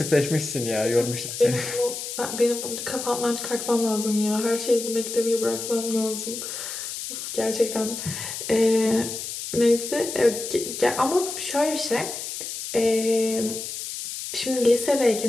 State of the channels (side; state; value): left; noise; hiss, 7 dB below the sound